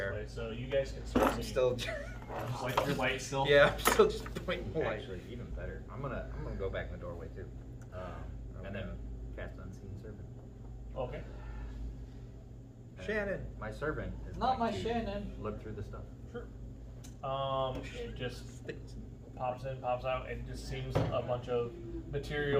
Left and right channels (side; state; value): both; identical; correlation 1.00